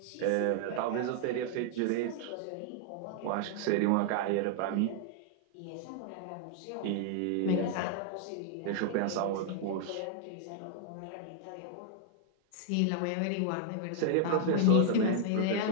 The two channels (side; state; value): both; different; correlation 0.00